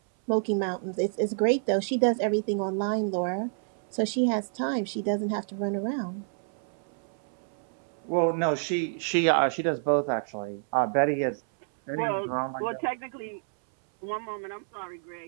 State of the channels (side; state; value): left; silent; 59 dB below the other